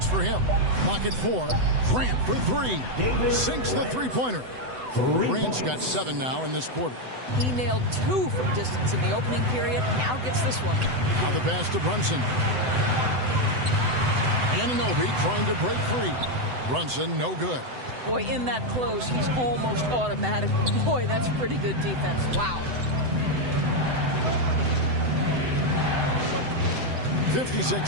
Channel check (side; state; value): left; late; 7.9 ms